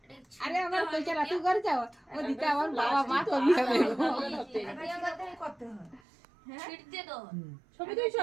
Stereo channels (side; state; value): left; drops out; at 6.0 s